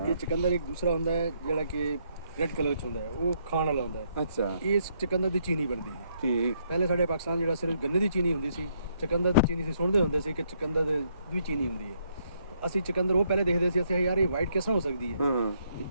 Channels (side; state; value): both; inverted; correlation -0.73